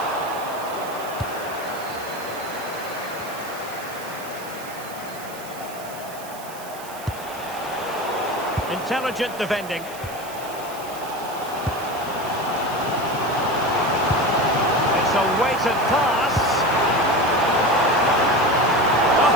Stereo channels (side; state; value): right; noise; hiss, 16 dB below the sound